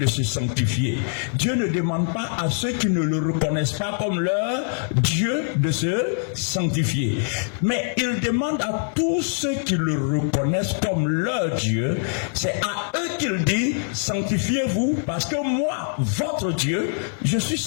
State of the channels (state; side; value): silent; right; digital silence